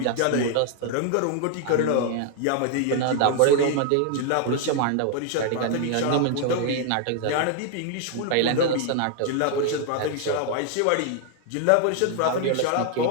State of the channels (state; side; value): different; both; correlation 0.00